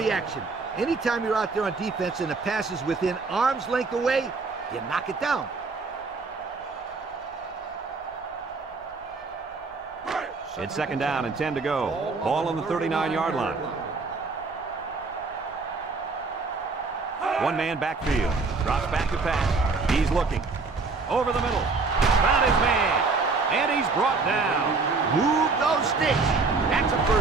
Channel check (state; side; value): quieter; left; 4.1 dB